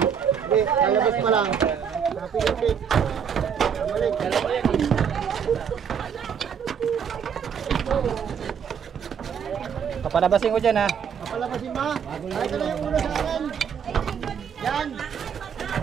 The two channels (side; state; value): left; quieter; 7.5 dB